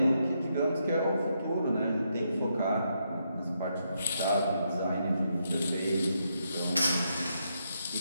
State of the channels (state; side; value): inverted; both; correlation -0.80